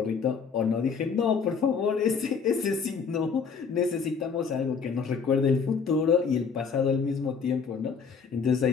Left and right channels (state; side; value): quieter; right; 5.8 dB